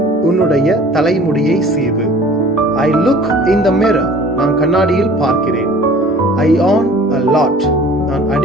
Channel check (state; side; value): normal; both; correlation 0.48